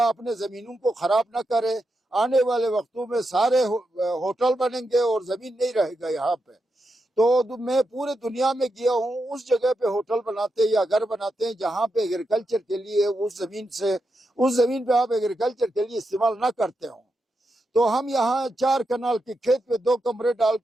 اپنے زمینوں کو خراب نہ کرے. آنے والے وقتوں میں سارے ہوٹل بنیں گے اور زمین نہیں رہے گا یہاں پہ. تو میں پورے دنیا میں گیا ہوں، اس جگہ پہ ہوٹل بناتے یا گھر بناتے ہیں جہاں پہ ایگریکلچر کے لیے اس زمین پہ آپ ایگریکلچر کے لیے استعمال نہ کرتے ہوں. تو ہم یہاں 4 کنال کے کھیت پہ 2 کمرے ڈال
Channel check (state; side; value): normal; both; correlation 0.86